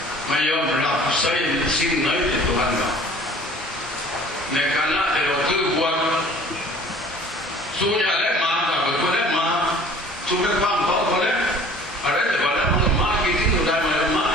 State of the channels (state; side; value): normal; both; correlation 0.49